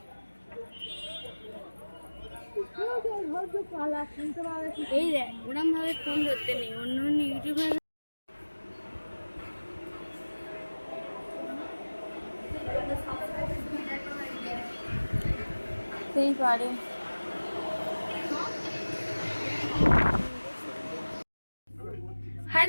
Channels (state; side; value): inverted; both; correlation -1.00